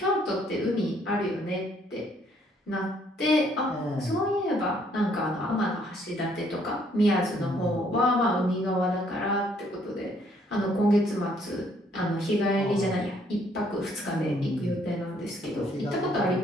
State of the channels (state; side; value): normal; both; correlation 0.66